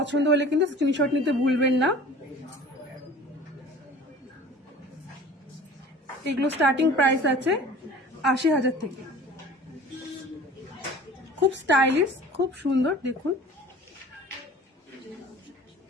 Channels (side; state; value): both; normal; correlation 0.44